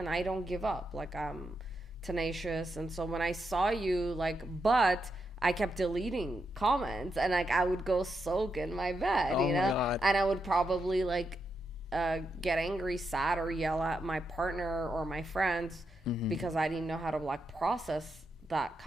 I don't give up. Like, I'm tenacious. And so when I saw you, like, but I kept deleting comments, and, like, I would go soak in my bed, my God. And I would probably, like, get angry, sad, or yell at my partner or my friends because I didn't know how to, like, process that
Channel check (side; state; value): both; normal; correlation 0.84